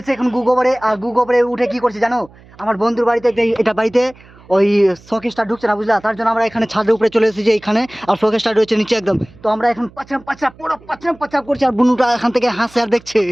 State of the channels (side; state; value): right; noise; hum, 25 dB below the sound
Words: এখন গুগোবরে। আর গুগোবরে উঠে কি করছি জানো, আমার বন্ধুর বাড়িতে এটা বাড়িতে ওই শোকেসটা ঢুকছে না বুঝলা, তার জন্য আমরা এখানে ছাদের উপরে চলে এসেছি এইখানে। আর শোকেসটা রয়েছে নিচে একদম। তো আমরা এখন পুরো পাচরাম করছি। আর বুনুটা এখান থেকে হাসে আর দেখছে।